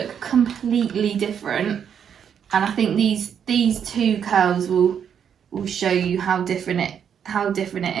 completely different. And I think these two curls will show you how different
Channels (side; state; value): left; quieter; 8.1 dB